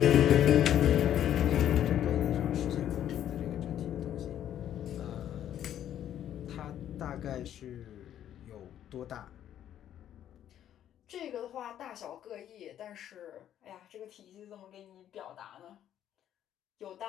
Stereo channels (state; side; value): quieter; right; 10.8 dB